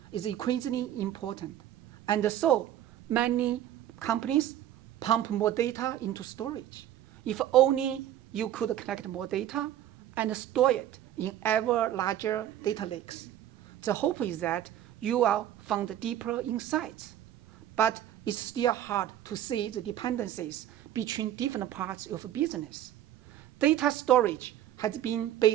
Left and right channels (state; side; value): quieter; left; 11.8 dB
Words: is increasingly important. And so, many companies pump more data into storage. If only you could collect more data and store it in ever larger data lakes. The hope is that you will find deeper insights. But it's still hard to see the dependencies between different parts of a business. Data storage has been